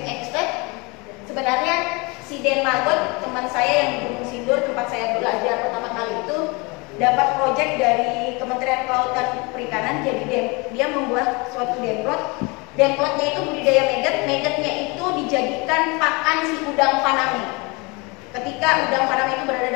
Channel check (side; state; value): right; quieter; 27.7 dB